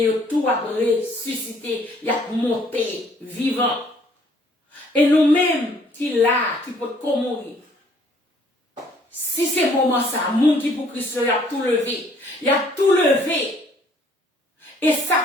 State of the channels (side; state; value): both; normal; correlation 0.61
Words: tout a ressuscité, il a monté vivant. Et nous-mêmes qui là, qui peut mourir. Si c'est moment ça, monde qui pour Christ, il a tout levé. Il a tout levé. Et